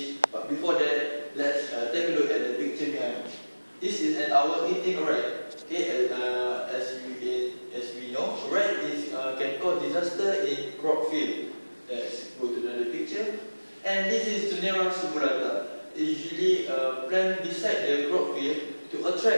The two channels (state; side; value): inverted; both; correlation -1.00